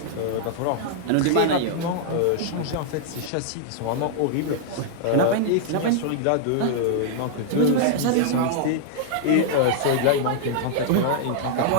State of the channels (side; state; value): both; different; correlation -0.01